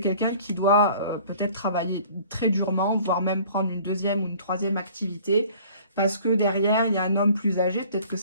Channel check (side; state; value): both; inverted; correlation -0.51